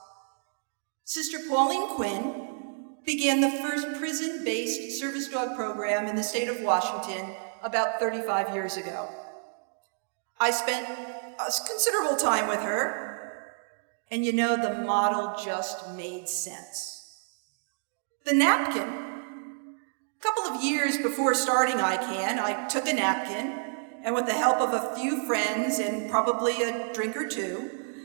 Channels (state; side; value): silent; left; digital silence